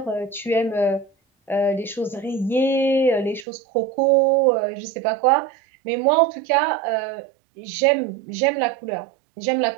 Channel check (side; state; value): left; drops out; at 3.5 s